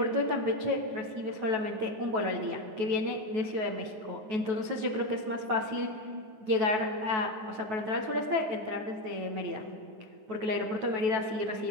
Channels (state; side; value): late; left; 9.3 ms